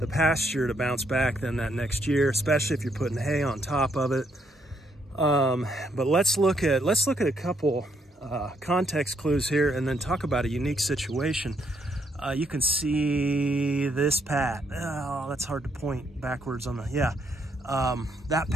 pasture to bounce back than that next year, especially if you're putting hay on top of it. But let's look at a couple context clues here, and then talk about a unique situation. You can see this pat. Oh, that's hard to point backwards on the, yeah. That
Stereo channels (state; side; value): normal; both; correlation 0.73